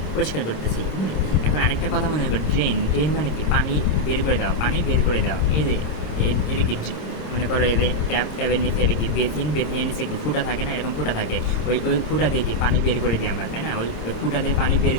করতেছি, এখন আরেকটা কথা মনে করো, ড্রেন মানে কি, পানি বের করে দেওয়া, এই যে এটা কি মনে করো এই যে ট্যাবের নিচে এটা কি বেসিনের নিচে কি ফুটা থাকে না, এরকম ফুটা থাকে, ওই ফুটা দিয়ে কি পানি বের করে দিই আমরা, তাই না? ওই ফুটা দিয়ে পানি বের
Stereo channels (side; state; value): right; late; 26 ms